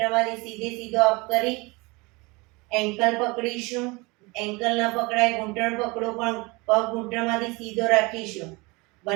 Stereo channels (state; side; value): quieter; left; 25.5 dB